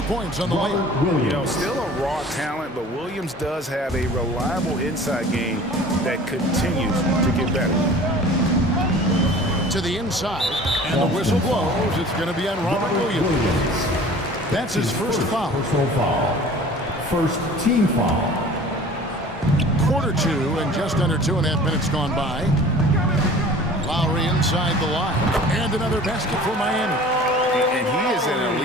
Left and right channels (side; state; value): both; normal; correlation 0.45